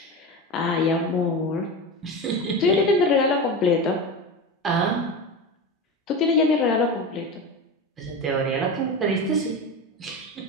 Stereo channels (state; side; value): normal; both; correlation 0.24